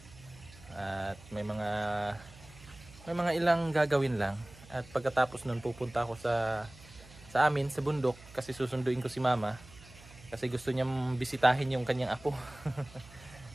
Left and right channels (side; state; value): right; noise; hum, 21 dB below the sound